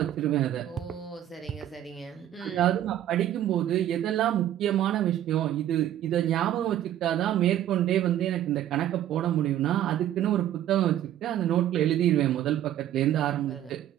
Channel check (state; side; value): quieter; left; 11.9 dB